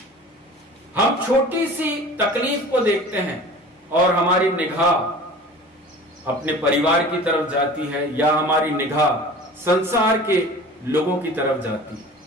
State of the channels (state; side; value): normal; both; correlation 0.41